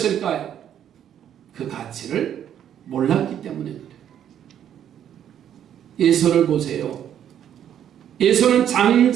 그 가치를 몰랐기 때문에 그래요. 에서를 보세요. 에서는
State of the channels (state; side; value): quieter; left; 9.9 dB